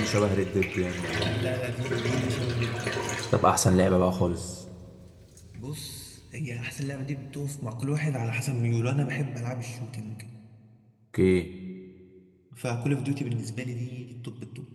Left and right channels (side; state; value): both; identical; correlation 1.00